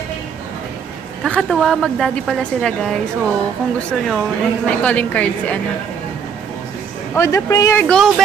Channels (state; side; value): quieter; left; 7.0 dB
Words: Kakatuwa, mag-daddy pala sila guys. So, kung gusto nyo, may calling card si ano. Oh, the prayer! Go,